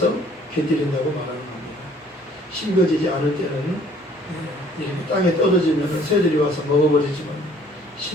곁들인다고 말하는 겁니다. 심겨지지 않을 때는 이렇게 땅에 떨어지면 새들이 와서 먹어버리지만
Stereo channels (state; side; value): normal; both; correlation 0.58